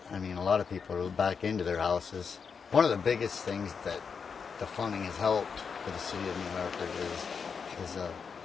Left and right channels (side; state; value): right; quieter; 5.9 dB